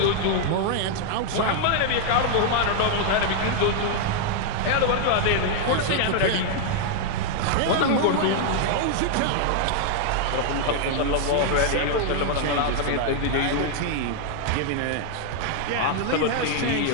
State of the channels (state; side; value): different; both; correlation 0.00